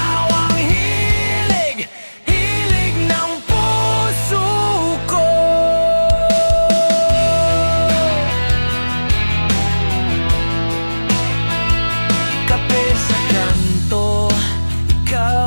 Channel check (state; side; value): inverted; both; correlation -1.00